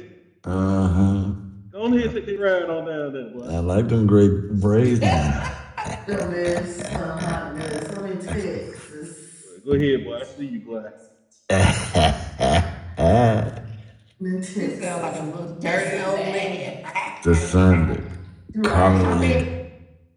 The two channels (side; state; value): both; identical; correlation 1.00